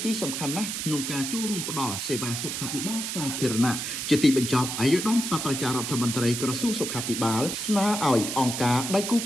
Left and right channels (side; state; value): right; noise; hiss, 4 dB below the sound